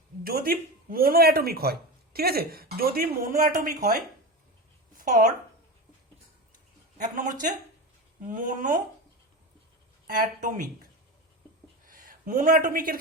যদি মোনো অ্যাটমিক হয়, ঠিক আছে? যদি মোনো অ্যাটমিক হয়, ফর এক নম্বর হচ্ছে মোনো অ্যাটমিক। মোনো অ্যাটমিকের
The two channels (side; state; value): both; normal; correlation 0.23